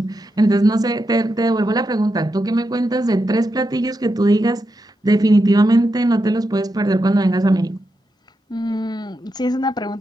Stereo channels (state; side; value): normal; both; correlation 0.86